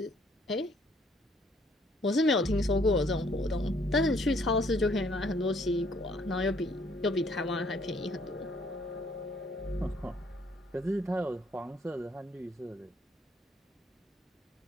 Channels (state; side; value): normal; both; correlation 0.64